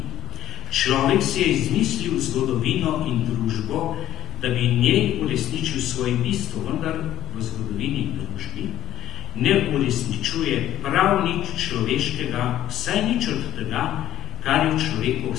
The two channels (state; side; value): quieter; right; 12.8 dB